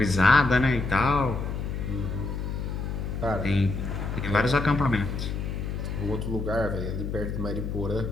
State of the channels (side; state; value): left; noise; hum, 4 dB below the sound